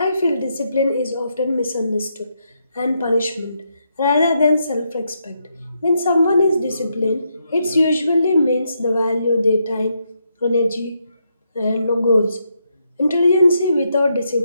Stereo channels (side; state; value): both; inverted; correlation -0.79